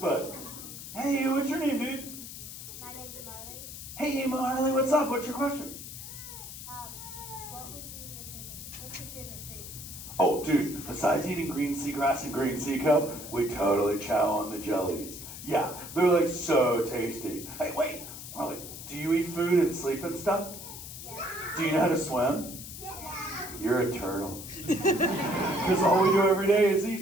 Hey, what's your name, dude? My name's Marley. Hey, Marley, what's up? What's your question? What's your favorite food? Oh, dude, besides eating green seagrass and green sea cup, we totally chow on the jellies. Yeah, they're like so tasty. Hey, wait, Marley, do you eat food and sleep and stuff? Yeah. Do you know how to swim? Yeah. You're a turtle. Because all we do every day is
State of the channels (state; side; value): noise; left; hiss, 11 dB below the sound